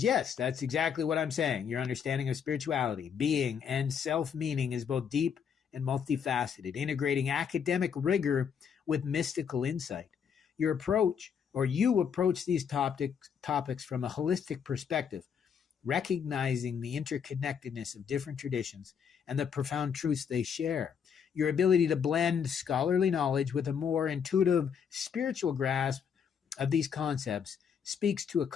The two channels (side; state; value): right; quieter; 7.3 dB